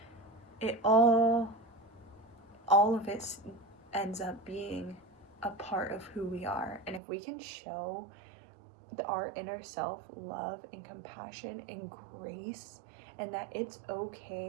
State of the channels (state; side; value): drops out; left; at 7.0 s